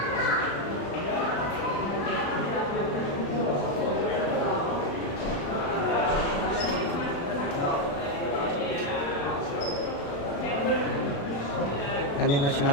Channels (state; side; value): late; right; 36 ms